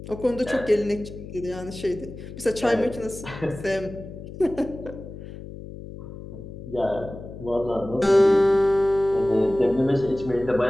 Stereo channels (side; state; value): left; noise; hum, 13 dB below the sound